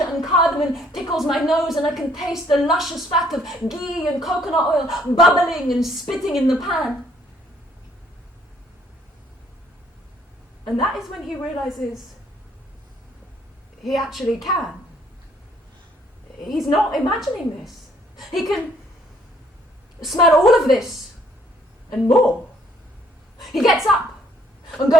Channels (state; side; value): normal; both; correlation 0.64